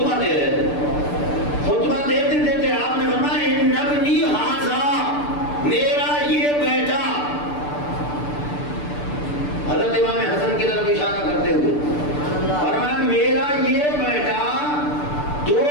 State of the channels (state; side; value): late; right; 6.8 ms